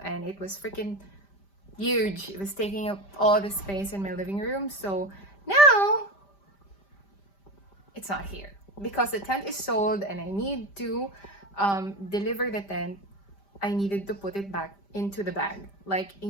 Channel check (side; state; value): right; late; 5.1 ms